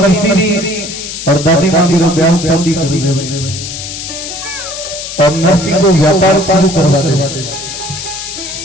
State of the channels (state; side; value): noise; left; hiss, 8 dB below the sound